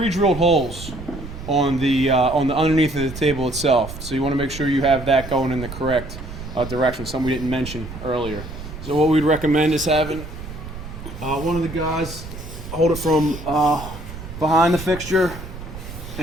holes on the underneath of the table itself. So you want to make sure you have that going in the correct direction, something we didn't mention earlier. So what we'd recommend is having one of the guys hold it from behind the fixture,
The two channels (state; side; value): noise; right; rumble, 11 dB below the sound